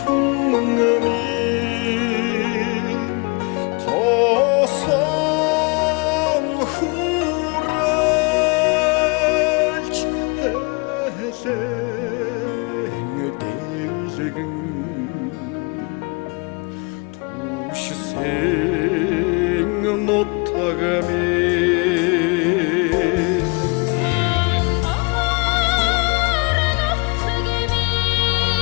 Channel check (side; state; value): right; quieter; 30.8 dB